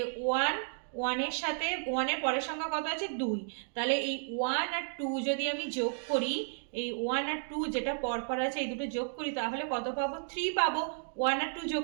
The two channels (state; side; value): silent; left; digital silence